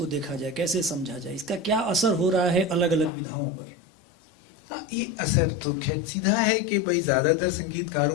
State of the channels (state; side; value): drops out; right; at 3.1 s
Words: देखा जाए, कैसे समझा जाए, इसका क्या असर हो रहा है अलग अलग विधाओं पर? ये असर तो खैर सीधा है कि भाई ज्यादातर